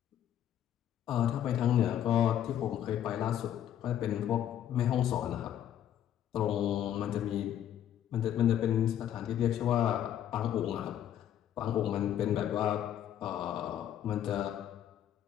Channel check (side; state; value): right; quieter; 10.7 dB